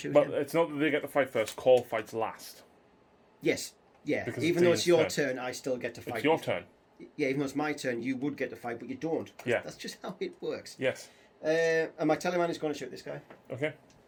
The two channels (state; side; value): identical; both; correlation 1.00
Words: But him. it's not that they get to fight first. Call fights last. Yes. Yeah. Because even though it's your turn, I still get to fight. It's your turn. Yeah, even though it's my turn, you would get to fight, but you don't. Yeah. That's just how it works. Yes. And my Tallyman is going to shoot this guy. Okay.